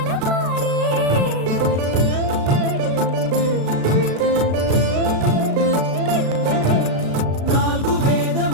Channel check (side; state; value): left; late; 36 ms